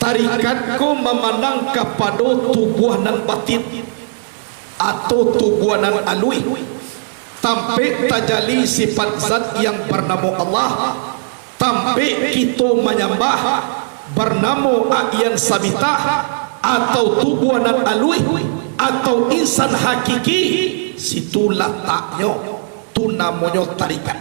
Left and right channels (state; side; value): silent; left; digital silence